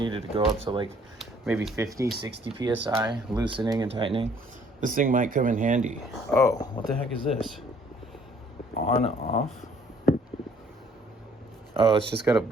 to go up to like maybe 50, 60 psi, loosening and tightening, this thing might come in handy. Oh, what the heck is this? On, off? Oh, it's just got a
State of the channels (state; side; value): normal; both; correlation 0.61